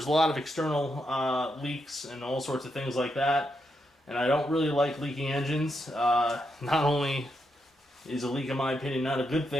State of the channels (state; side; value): normal; both; correlation 0.82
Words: a lot of external leaks and all sorts of things like that. And I don't really like leaking engines. Not only is a leak, in my opinion, not a good